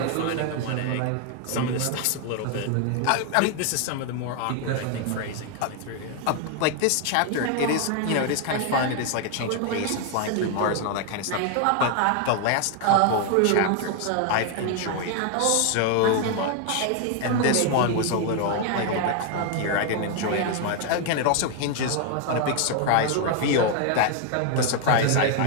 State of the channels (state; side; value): different; both; correlation 0.00